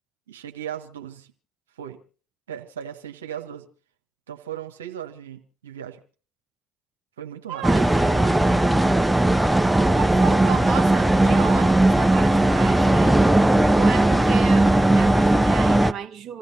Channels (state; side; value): normal; both; correlation 0.96